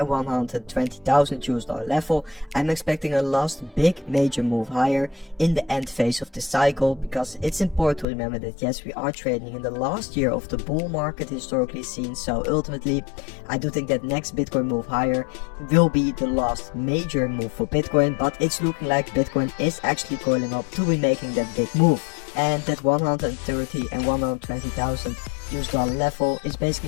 120,000 US dollar level. I'm expecting a last big major move higher in the end phase of the cycle, because it's important to remember that yes, we are trading in the last year of the bull market historically seen. So ultimately I do think that next Bitcoin move higher will be the last major move for Bitcoin, but it's looking like Bitcoin is actually coiling up to be making that big move. And that 130 and 120,000 US dollar level is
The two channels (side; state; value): right; drops out; at 8.1 s